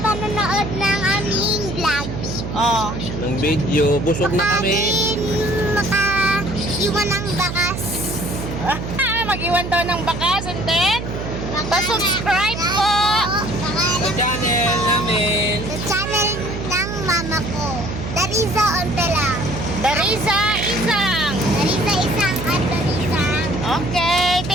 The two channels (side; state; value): right; noise; hum, 6 dB below the sound